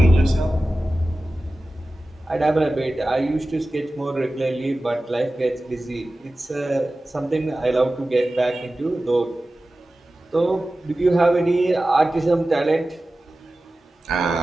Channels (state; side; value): normal; both; correlation 0.95